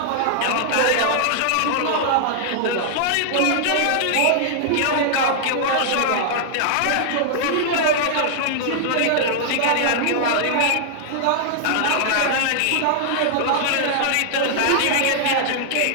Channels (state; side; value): different; both; correlation -0.01